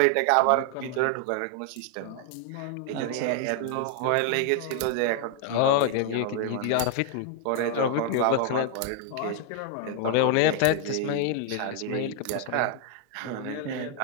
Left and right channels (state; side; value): different; both; correlation 0.00